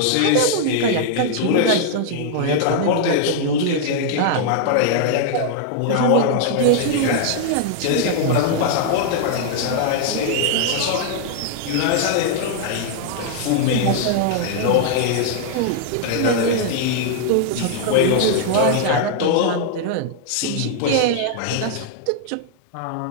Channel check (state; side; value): different; both; correlation -0.01